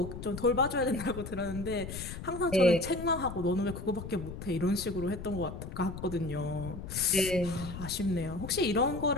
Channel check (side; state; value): left; noise; rumble, 9 dB below the sound